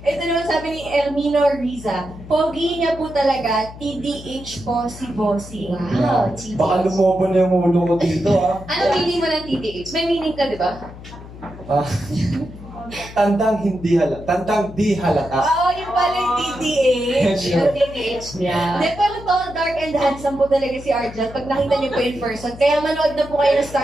Ito naman sabi ni Elmino Riza, pogi niya po talaga, TDH po si Bossing. Wow, TDH. Baka lumobo na yung ulo ko dito, ah. Ano meaning mo ng TDH? May meaning ka, di ba? Tandang hindi halata. Tandang di halata. Oo, yung pala yung TDH. Yung TDH niya. Hindi, pero tall, dark, and handsome po talaga si Arjan pag nakita niyo po in person. Kaya manood na po kayo ng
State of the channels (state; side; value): noise; left; hum, 15 dB below the sound